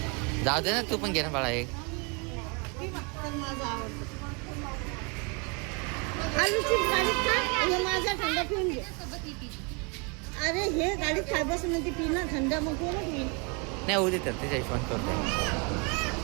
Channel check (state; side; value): quieter; left; 33.0 dB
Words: जाऊ दे ना. तू पण घे ना बाळा. एक आलूची गाडीत खा. हे माझा थंड पिऊन घे. अरे हे गाडीत खाय बसून म्हणते पी ना थंड. मग कोण पिईल? नाही होऊ दे तर त्याच्या हिशोबाने करतो.